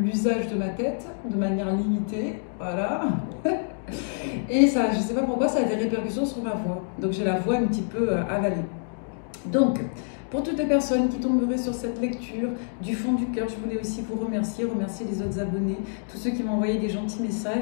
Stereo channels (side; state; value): right; silent; digital silence